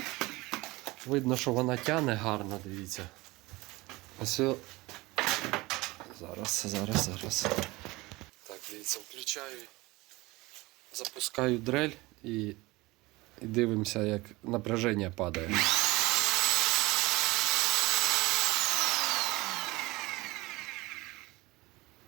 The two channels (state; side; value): quieter; left; 21.6 dB